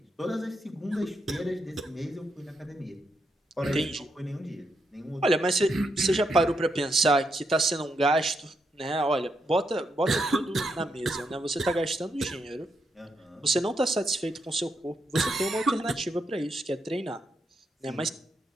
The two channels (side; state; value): both; normal; correlation 0.81